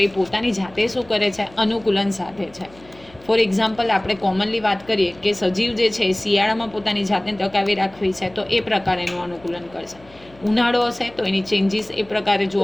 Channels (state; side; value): noise; left; hum, 26 dB below the sound